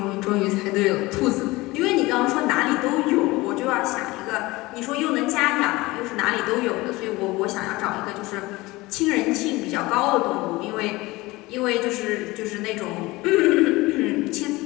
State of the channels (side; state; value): right; quieter; 20.9 dB